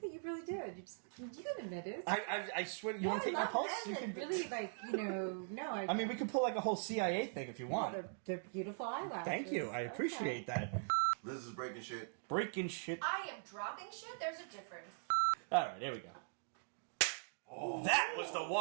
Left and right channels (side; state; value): left; silent; digital silence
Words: that you really did. You can admit it. I swear. You want to take my pulse? You can. Really, like, no. I mean, we could pull like a whole CIA thing if you want. They're beautiful eyelashes. Thank you. I appreciate that. Liz is breaking shit. Breaking shit. I am dropping shit. There's a difference. All right, here we go. That was the